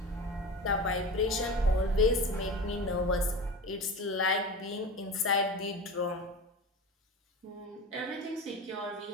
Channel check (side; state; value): both; normal; correlation 0.30